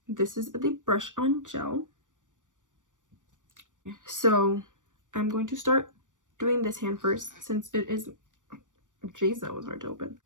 this is the brush on gel. So I'm going to start doing this hand first since it is, jeez, that was hard to open.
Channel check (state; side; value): late; left; 0.87 ms